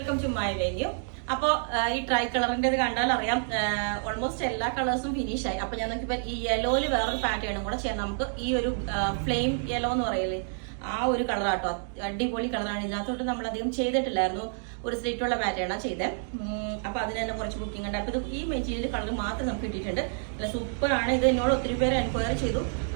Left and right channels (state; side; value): silent; left; digital silence